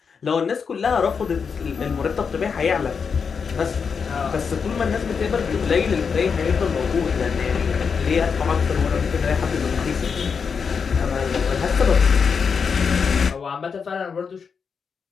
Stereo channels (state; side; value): quieter; right; 6.0 dB